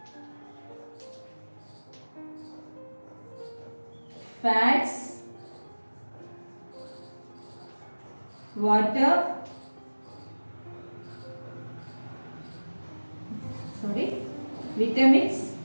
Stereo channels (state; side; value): inverted; both; correlation -1.00